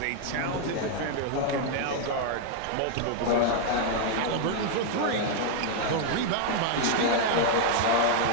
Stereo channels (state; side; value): different; both; correlation 0.00